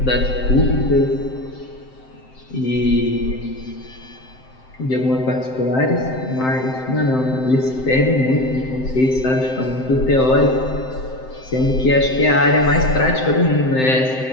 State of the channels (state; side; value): late; right; 7.7 ms